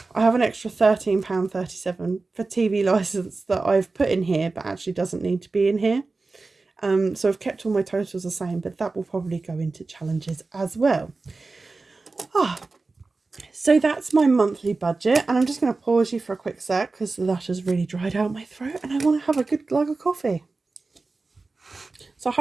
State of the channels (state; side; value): quieter; left; 3.7 dB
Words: I have an extra £13.37 for TV license that I've put in here, but actually doesn't need to be in here. So I've kept all my totals the same, but that will probably go into challenges as well. So that's my monthly budget, and I'm just going to pause you for a quick sec because that has really dried out my throat and I want to have a good glug of coffee. So